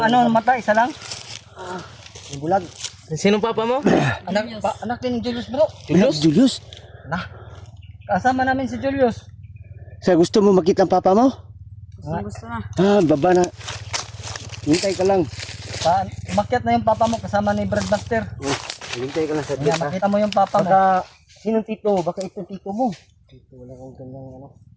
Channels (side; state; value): both; identical; correlation 1.00